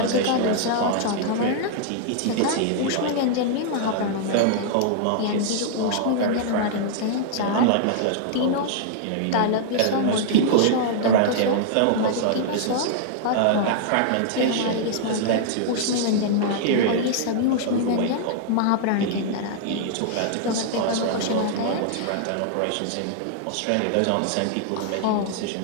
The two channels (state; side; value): different; both; correlation -0.01